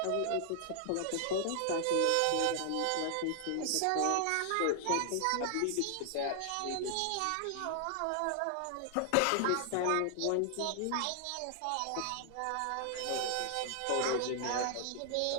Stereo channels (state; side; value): different; both; correlation 0.00